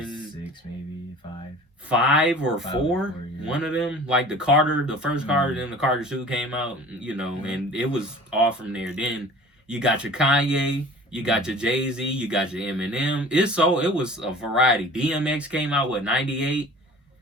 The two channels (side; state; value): both; normal; correlation 0.43